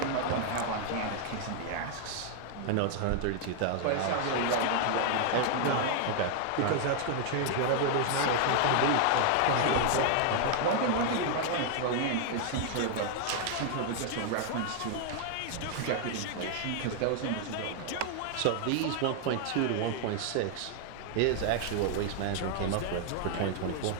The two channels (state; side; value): different; both; correlation 0.00